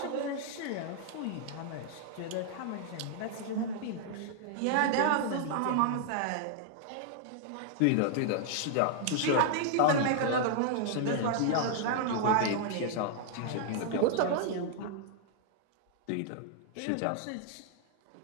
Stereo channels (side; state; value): both; different; correlation 0.00